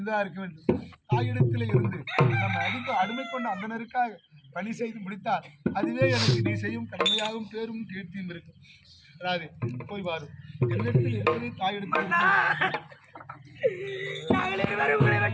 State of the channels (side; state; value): both; identical; correlation 1.00